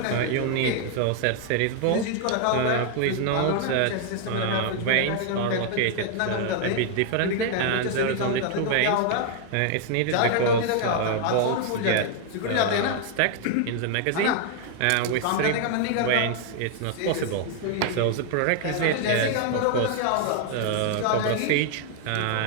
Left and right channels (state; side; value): different; both; correlation 0.00